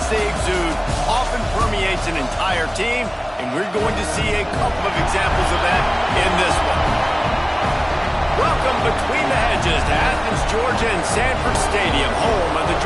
they exude often permeates an entire team, and we're going to see a couple of examples of that in this one. Welcome between the hedges to Athens, Georgia and Sanford Stadium, home of the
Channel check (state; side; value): identical; both; correlation 1.00